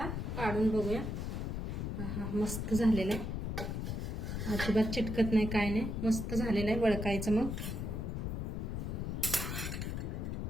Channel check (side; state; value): left; noise; rumble, 2 dB below the sound